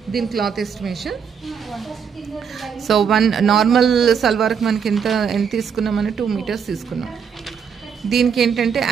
దీని cloth estimation. So one normal సల్వార్కి మనకి ఎంత తీసుకున్నామని 2 మీటర్స్ తీసుకున్నాం. దీనికి ఏంటంటే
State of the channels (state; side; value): quieter; left; 7.0 dB